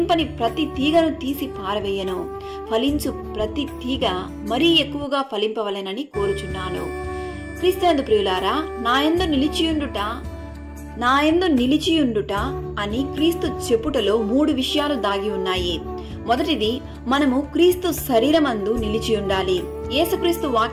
ప్రతి తీగను తీసి పారవేయను, ఫలించు ప్రతి తీగ మరీ ఎక్కువగా ఫలింపవలెనని కోరుచున్నాను. క్రీస్తునందు ప్రియులారా, నా యందు నిలిచియుండుట అని క్రీస్తు చెప్పుటలో 3 విషయాలు దాగి ఉన్నాయి. మొదటిది, మనము క్రీస్తు శరీరమందు నిలిచి ఉండాలి. యేసుక్రీస్తు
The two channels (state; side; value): identical; both; correlation 1.00